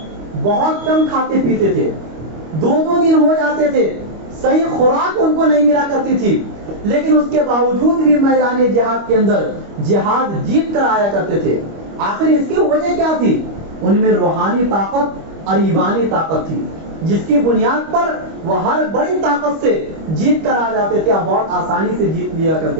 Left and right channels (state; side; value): late; left; 25 ms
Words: بہت کم کھاتے پیتے تھے، 2 دن ہو جاتے تھے، صحیح خوراک ان کو نہیں ملا کرتی تھی، لیکن اس کے باوجود بھی میدان جہاد کے اندر جہاد جیت کر آیا کرتے تھے. آخر اس کی وجہ کیا تھی؟ ان میں روحانی طاقت اور ایمانی طاقت تھی، جس کی بنیاد پر وہ ہر بڑی طاقت سے جیت کر آ جاتے تھے اور بہت آسانی سے جیت لیا